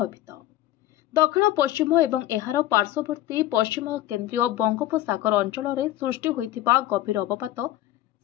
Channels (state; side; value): quieter; right; 14.3 dB